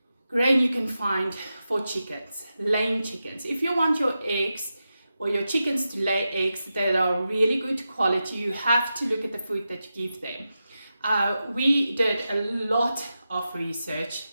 grain you can find for chickens, laying chickens. If you want your eggs or your chickens to lay eggs that are really good quality, you have to look at the food that you give them. We did a lot of research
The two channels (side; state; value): both; inverted; correlation -0.90